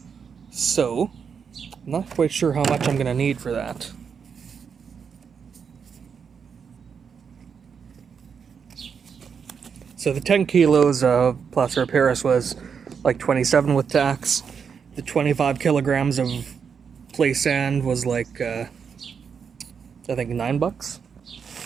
So, I'm not quite sure how much I'm going to need for that. So the 10 kilos of plaster of Paris was like 27 with tax. The 25 kilograms of play sand was like, I think $9.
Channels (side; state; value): left; quieter; 6.5 dB